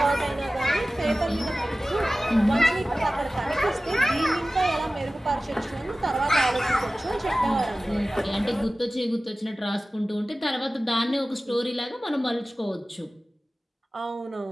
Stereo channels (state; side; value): normal; both; correlation 0.97